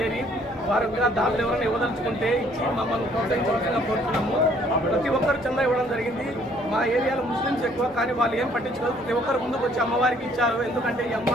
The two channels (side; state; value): both; normal; correlation 0.61